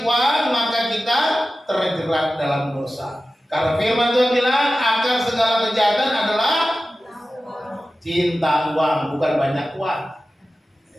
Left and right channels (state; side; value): normal; both; correlation 0.95